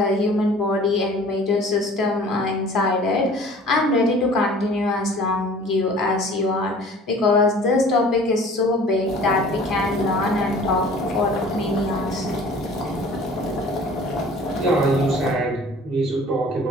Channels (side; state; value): both; normal; correlation 0.48